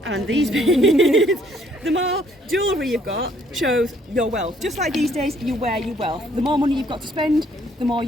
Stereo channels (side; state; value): both; normal; correlation 0.64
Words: and these beads. The more jewellery you've got shows your wealth. Just like these days, you wear your wealth. The more money you've got to spend, the more